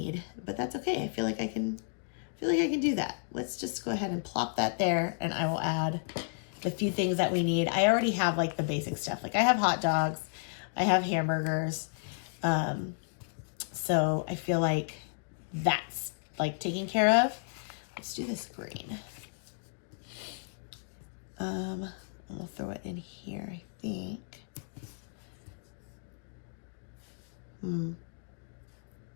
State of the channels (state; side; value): silent; right; digital silence